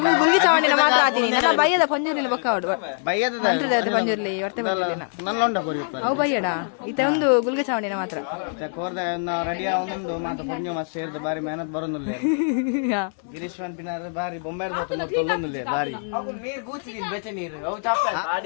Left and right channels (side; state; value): right; silent; 63 dB below the other